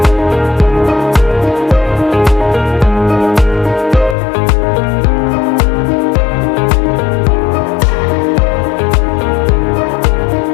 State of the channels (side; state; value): right; drops out; at 4.2 s